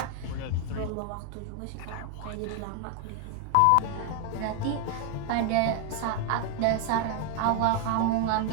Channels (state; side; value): different; both; correlation 0.01